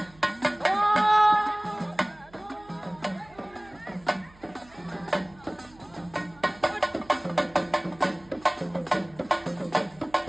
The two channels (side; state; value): right; noise; hum, 26 dB below the sound